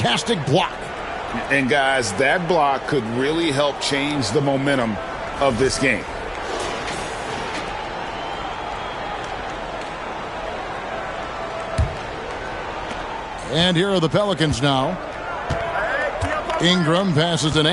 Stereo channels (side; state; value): both; identical; correlation 1.00